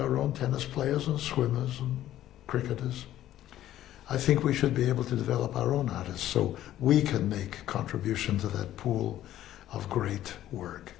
own tennis players and swimmers and cricketers. I think we should be able to develop our own artists so we can make contribution to that pool of great work.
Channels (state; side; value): quieter; right; 13.0 dB